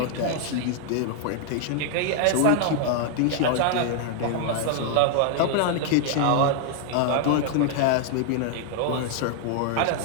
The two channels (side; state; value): both; different; correlation 0.00